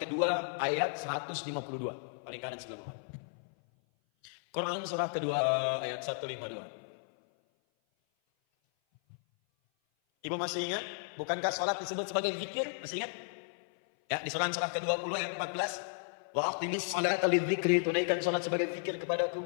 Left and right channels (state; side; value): silent; right; 55 dB below the other